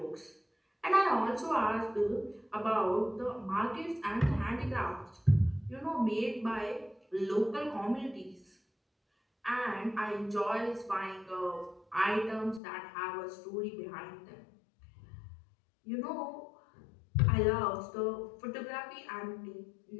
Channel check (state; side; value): drops out; right; at 12.6 s